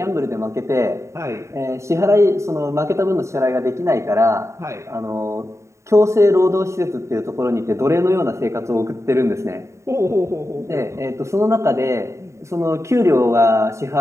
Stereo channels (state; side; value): late; left; 0.14 ms